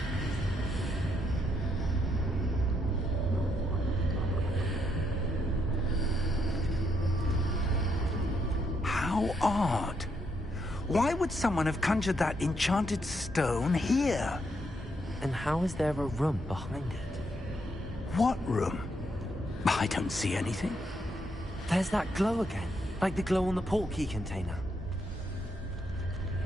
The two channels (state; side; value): normal; both; correlation 0.76